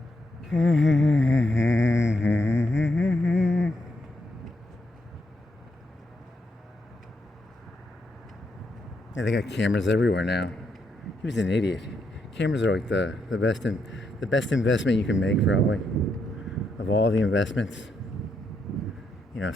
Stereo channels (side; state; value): both; normal; correlation 0.80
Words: Yeah, they got cameras everywhere now. He was an idiot. Cameras are like the best investment you can make, probably, of all the investments. You know,